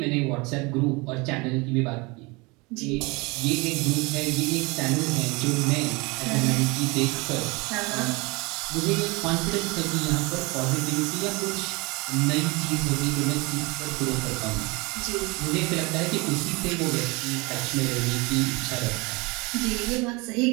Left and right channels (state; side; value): quieter; left; 26.4 dB